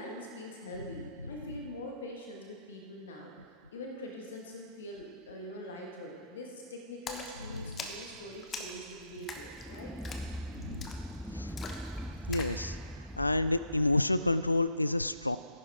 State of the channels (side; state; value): both; inverted; correlation -0.68